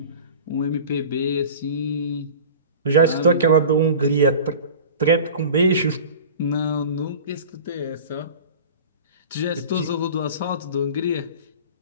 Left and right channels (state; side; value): inverted; both; correlation -0.38